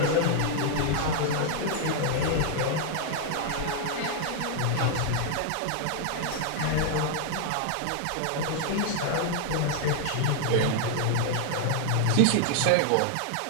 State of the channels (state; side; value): different; both; correlation 0.00